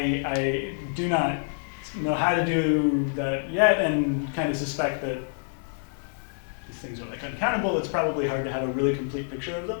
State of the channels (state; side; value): silent; right; digital silence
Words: do not know how to do that yet, and kind of suspect that these things are like uncountable. It's probably hard to have a really complete picture of